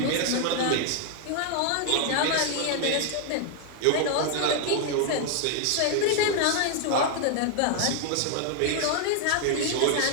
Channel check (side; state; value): both; different; correlation 0.00